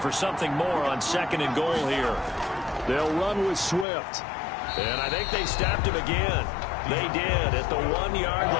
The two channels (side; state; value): right; drops out; at 3.9 s